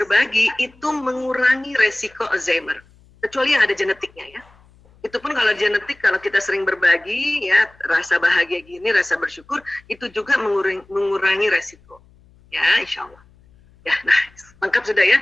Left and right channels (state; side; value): noise; left; hum, 29 dB below the sound